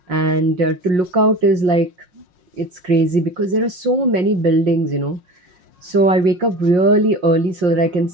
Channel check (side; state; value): left; late; 5.6 ms